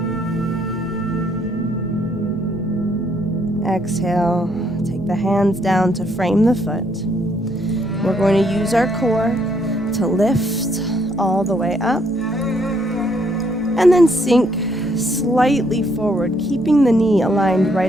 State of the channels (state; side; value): normal; both; correlation 0.70